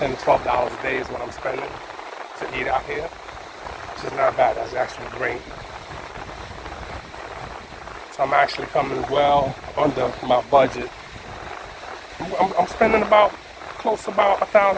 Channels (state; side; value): identical; both; correlation 1.00